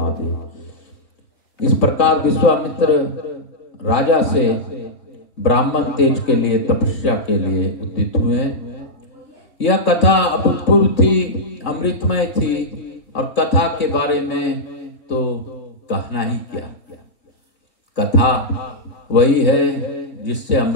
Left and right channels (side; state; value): right; late; 3.0 ms